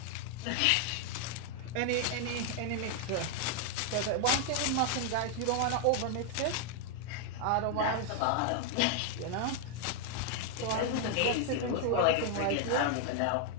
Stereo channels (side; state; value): both; different; correlation 0.00